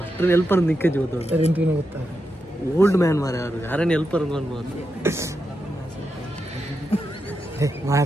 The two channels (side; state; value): both; normal; correlation 0.86